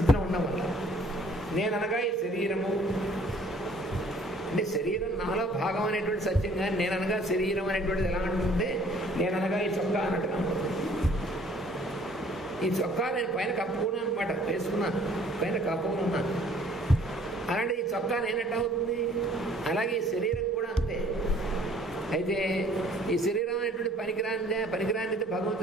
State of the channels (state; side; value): normal; both; correlation 0.57